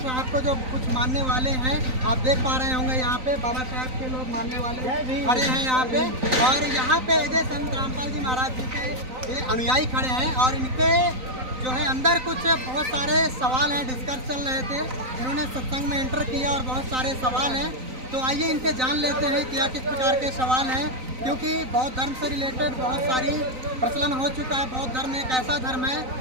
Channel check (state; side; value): late; left; 3.9 ms